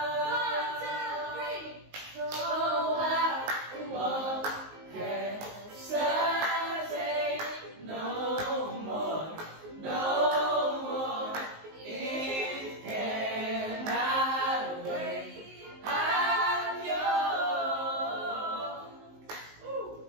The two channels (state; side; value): late; left; 19 ms